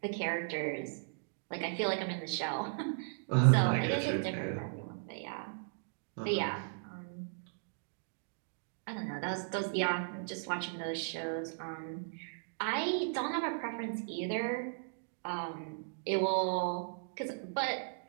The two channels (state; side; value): silent; left; digital silence